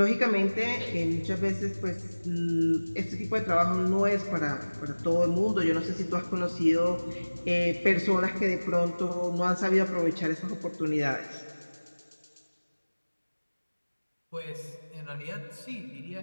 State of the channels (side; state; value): both; inverted; correlation -1.00